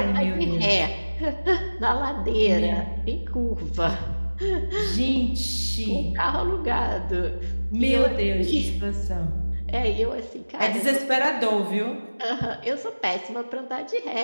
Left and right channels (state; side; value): inverted; both; correlation -1.00